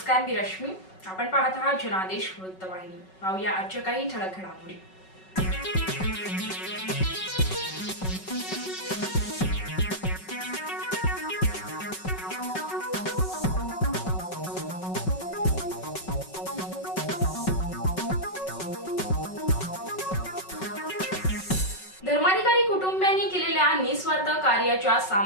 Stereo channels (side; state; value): right; late; 5.3 ms